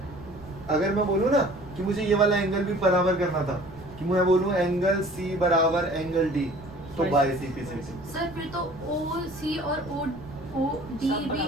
अगर मैं बोलूँ ना कि मुझे ये वाला एंगल भी बराबर करना था, कि मैं बोलूँ एंगल सी बराबर एंगल डी, तो बाय सीपीसीटी। सर फिर तो ओ सी और ओ डी भी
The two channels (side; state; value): right; noise; rumble, 18 dB below the sound